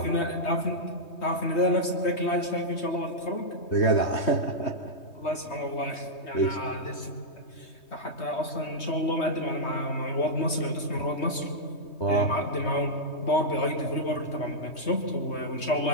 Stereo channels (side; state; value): right; late; 3.2 ms